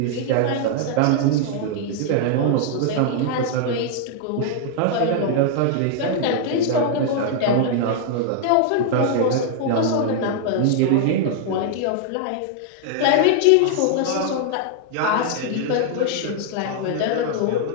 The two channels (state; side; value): different; both; correlation 0.00